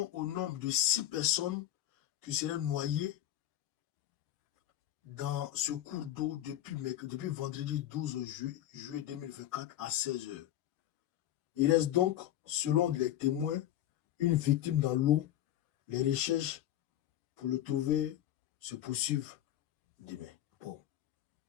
au nombre de 6 personnes qui seraient noyées dans ce cours d'eau depuis vendredi 12 juillet 2024 à 16 h. Il reste donc, selon les témoins, une victime dans l'eau. Les recherches pour le trouver se poursuivent demain. Bon,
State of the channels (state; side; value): quieter; right; 12.7 dB